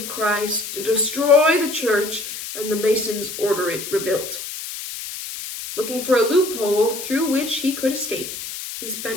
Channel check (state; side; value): noise; left; hiss, 8 dB below the sound